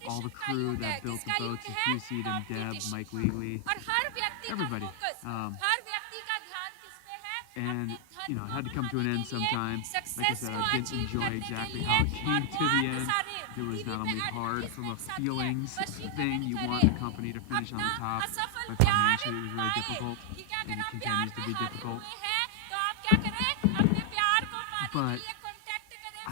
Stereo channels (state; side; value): different; both; correlation 0.00